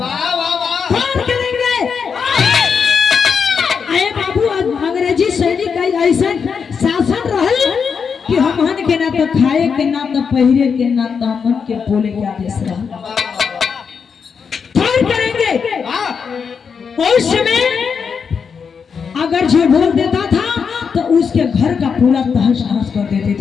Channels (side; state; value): right; quieter; 6.2 dB